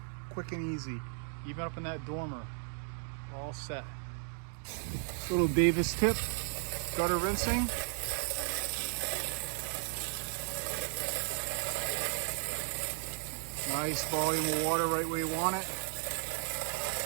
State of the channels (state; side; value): silent; left; 54 dB below the other